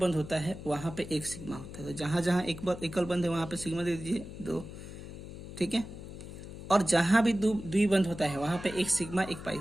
होता है वहां पे एक सिग्मा होता है, तो जहां जहां एकल बंध है वहां पे सिग्मा दे दीजिए 2। ठीक है, और जहां भी द्विबंध होता है वहां पे एक सिग्मा एक पाई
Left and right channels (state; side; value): noise; left; hum, 12 dB below the sound